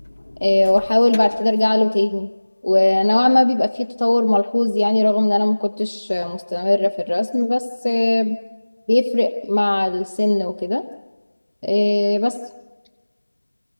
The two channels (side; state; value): both; inverted; correlation -1.00